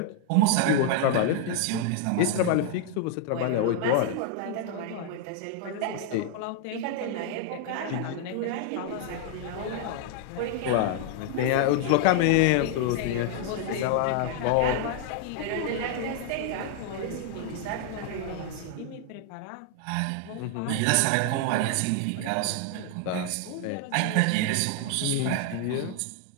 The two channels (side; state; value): both; different; correlation 0.00